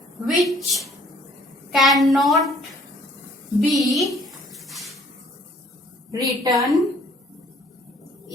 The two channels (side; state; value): both; normal; correlation 0.59